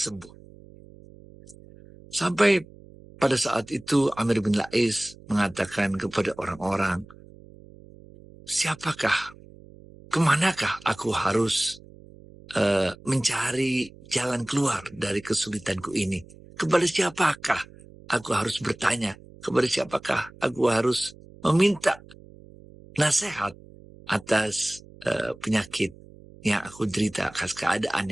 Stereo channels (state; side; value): noise; right; hum, 21 dB below the sound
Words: Sampai pada saat itu Amr bin La'is mengatakan kepada orang-orang, siapakah, kemanakah aku harus mencari jalan keluar dari kesulitanku ini? Kepada siapakah aku harus bertanya? Kepada siapakah aku harus meminta nasihat atas penyakit yang aku derita, atas keadaan